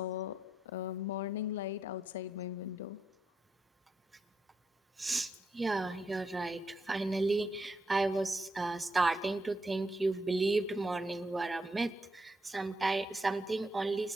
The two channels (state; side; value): normal; both; correlation 0.81